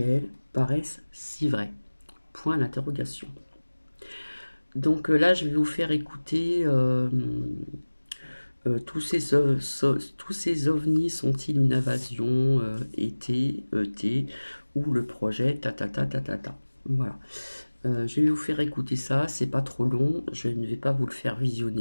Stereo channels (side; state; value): both; inverted; correlation -1.00